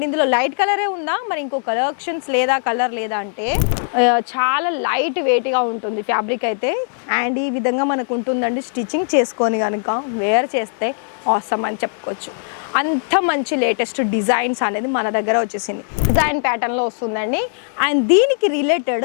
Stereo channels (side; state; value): right; silent; digital silence